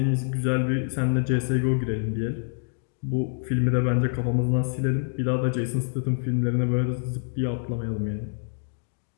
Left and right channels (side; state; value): right; silent; digital silence